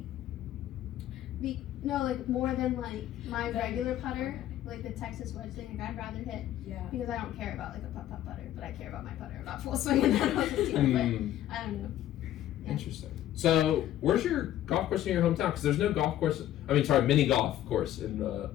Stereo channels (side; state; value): right; quieter; 12.7 dB